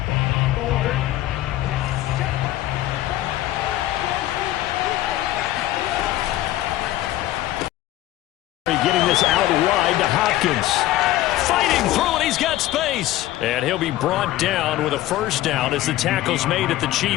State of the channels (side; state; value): right; quieter; 15.1 dB